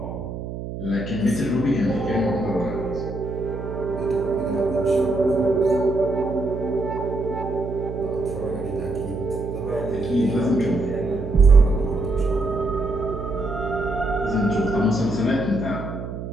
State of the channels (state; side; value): noise; right; hum, 7 dB below the sound